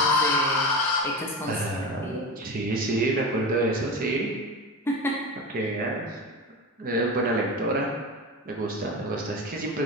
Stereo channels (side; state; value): both; normal; correlation 0.25